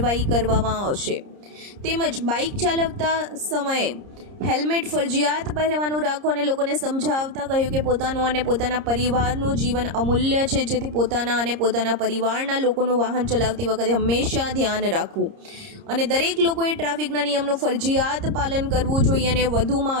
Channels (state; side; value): late; left; 30 ms